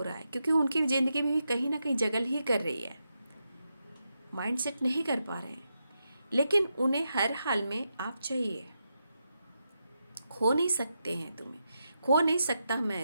रहा है, क्योंकि उनकी ज़िंदगी में भी कहीं ना कहीं जगल ही कर रही है, माइंडसेट नहीं कर पा रहे हैं, लेकिन उन्हें हर हाल में आप चाहिए। खो नहीं सकते हैं तुम्हें, खो नहीं सकता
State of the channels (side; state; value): both; inverted; correlation -0.86